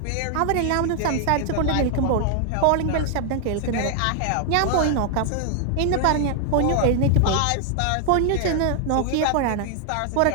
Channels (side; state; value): both; different; correlation 0.00